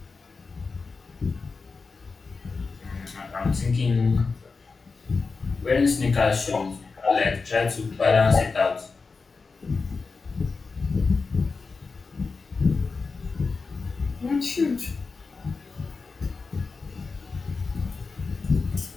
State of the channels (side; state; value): right; quieter; 4.4 dB